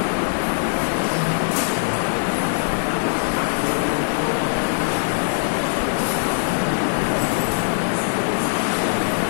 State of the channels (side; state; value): right; silent; digital silence